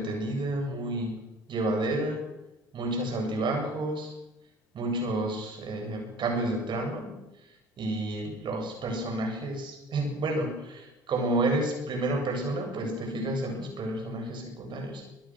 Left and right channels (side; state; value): both; normal; correlation 0.45